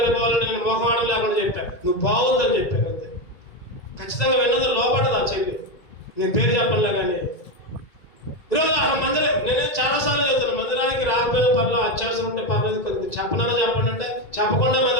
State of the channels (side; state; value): right; late; 2.0 ms